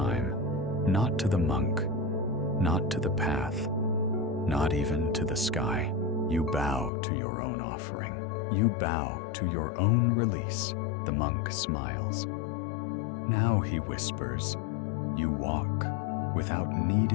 not to the monk, not to the path, not even to the sky. You bow to your own offering. You bow to your own release. The monk smiles. Now, he whispers, you walk without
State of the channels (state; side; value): drops out; right; at 6.9 s